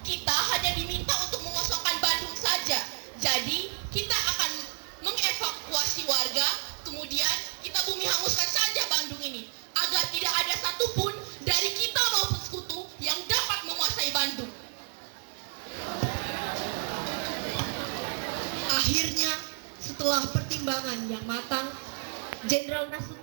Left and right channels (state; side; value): silent; left; 58 dB below the other